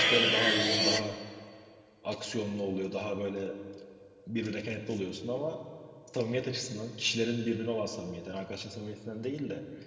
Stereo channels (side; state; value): both; identical; correlation 1.00